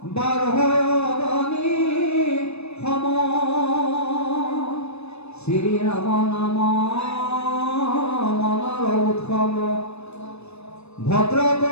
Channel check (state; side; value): late; right; 0.80 ms